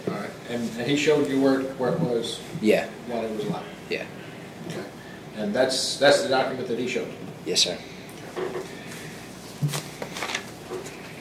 All right. And he showed you where it was Yeah, while he was alive? yeah. Okay. And that's the document that he showed you? Yes, sir.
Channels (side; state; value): both; identical; correlation 1.00